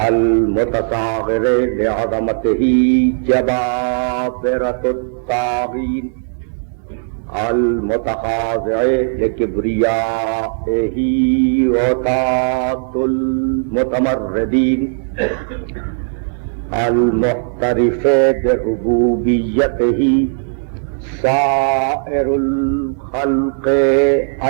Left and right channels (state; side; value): silent; left; digital silence